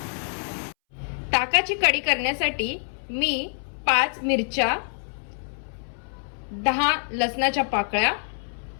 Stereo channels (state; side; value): silent; right; 61 dB below the other